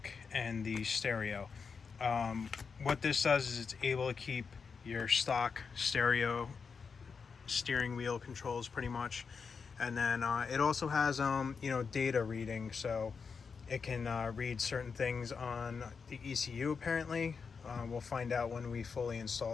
and the stereo. What this does is it's able to keep your stock stereo steering wheel controls pretty much. And then it also has data reading, so it can read certain things on the ECU apparently. We'll find out when we fully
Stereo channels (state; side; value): quieter; right; 5.5 dB